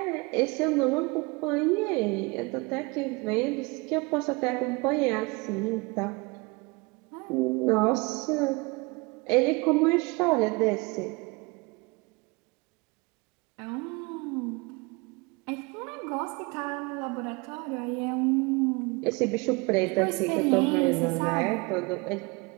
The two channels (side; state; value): left; quieter; 26.8 dB